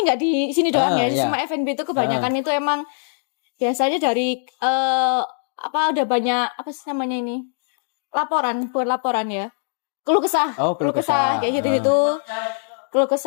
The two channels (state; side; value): silent; right; digital silence